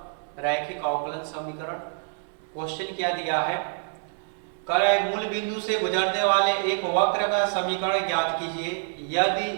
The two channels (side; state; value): left; silent; digital silence